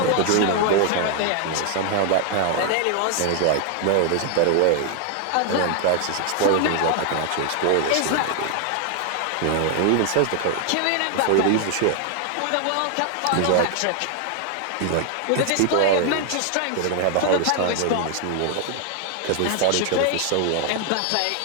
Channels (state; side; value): different; both; correlation 0.00